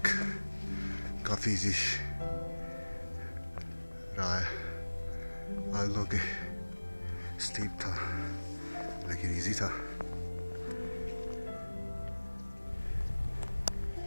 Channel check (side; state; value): both; inverted; correlation -1.00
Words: काफ़ी इजी रहा है, आल्दो के स्टीप था लेकिन इजी था।